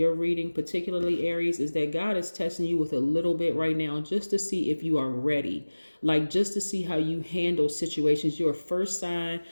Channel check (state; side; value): inverted; both; correlation -1.00